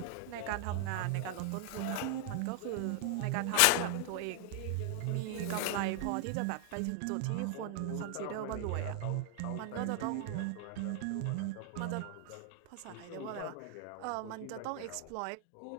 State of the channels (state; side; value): different; both; correlation 0.00